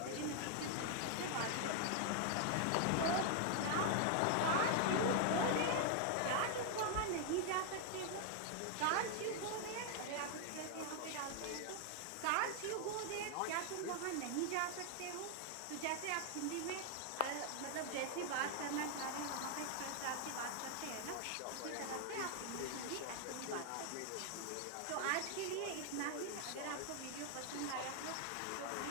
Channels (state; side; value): different; both; correlation 0.00